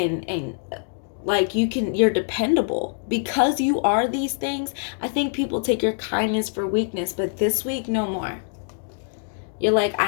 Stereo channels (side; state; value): right; silent; digital silence